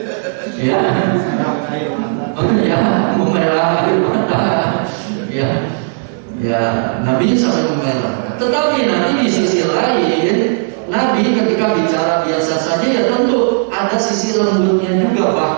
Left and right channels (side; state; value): left; silent; digital silence